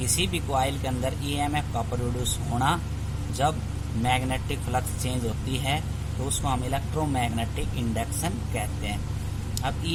भी कॉइल के अंदर EMF का प्रोड्यूस होना जब मैग्नेटिक फ्लक्स चेंज होती है तो उसको हम इलेक्ट्रोमैग्नेटिक इंडक्शन कहते हैं। अब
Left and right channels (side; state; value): both; identical; correlation 1.00